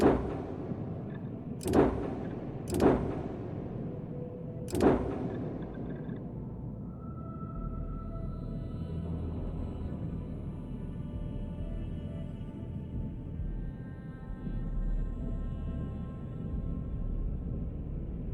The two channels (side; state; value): both; identical; correlation 1.00